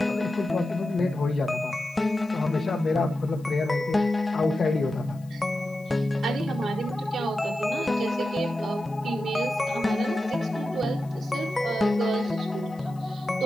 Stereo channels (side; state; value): left; noise; hiss, 28 dB below the sound